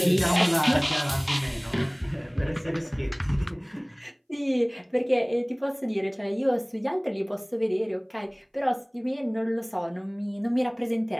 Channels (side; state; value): both; identical; correlation 1.00